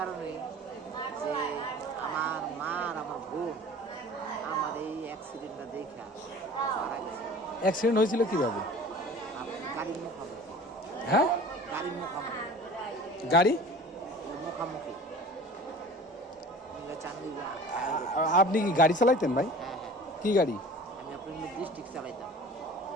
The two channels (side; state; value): both; normal; correlation 0.42